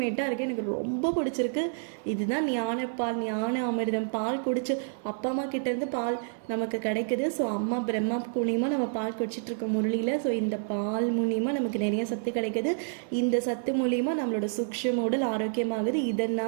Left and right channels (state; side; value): silent; left; 59 dB below the other